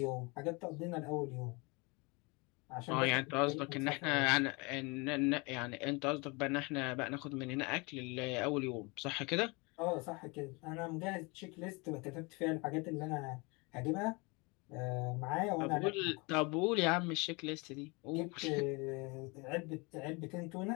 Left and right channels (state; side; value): quieter; right; 28.1 dB